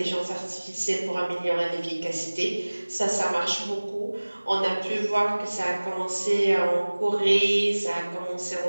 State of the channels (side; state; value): both; inverted; correlation -1.00